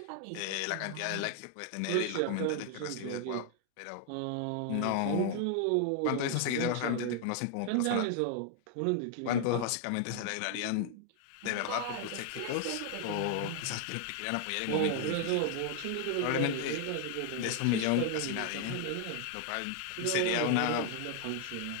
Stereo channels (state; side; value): different; both; correlation 0.00